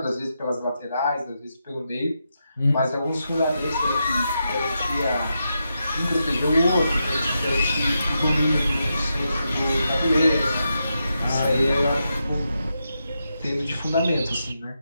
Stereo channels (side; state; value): both; inverted; correlation -0.86